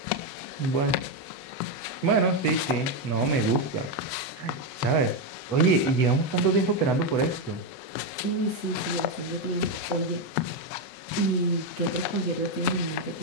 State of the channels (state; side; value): late; right; 8.0 ms